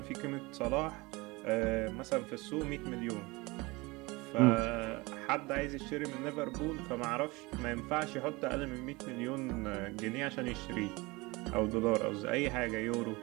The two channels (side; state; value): left; quieter; 24.0 dB